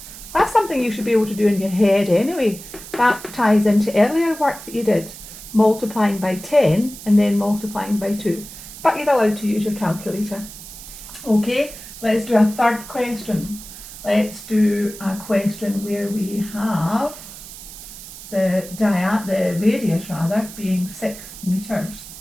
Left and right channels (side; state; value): right; noise; hiss, 14 dB below the sound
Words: That's something you should be able to do in your head anyway. That ties into earlier work that you did, multiplying by 10 and then multiplying by 2. But you're allowed to use your calculator. Okay, let's do a third question. Let's do a question where we have the radius being 6 metres.